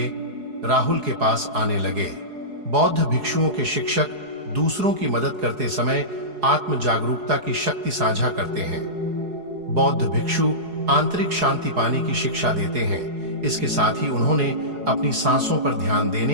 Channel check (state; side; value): late; left; 4.8 ms